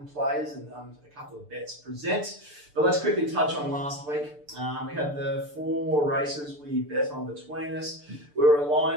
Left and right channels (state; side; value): late; left; 6.8 ms